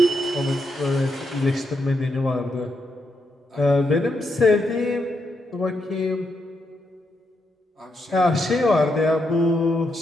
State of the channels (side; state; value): both; normal; correlation 0.81